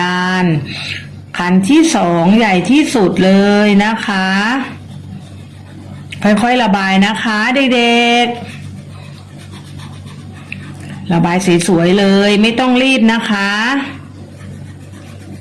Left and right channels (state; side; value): identical; both; correlation 1.00